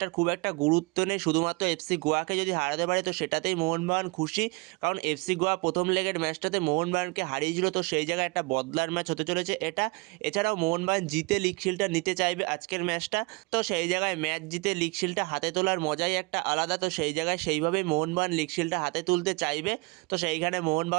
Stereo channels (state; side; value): quieter; left; 28.0 dB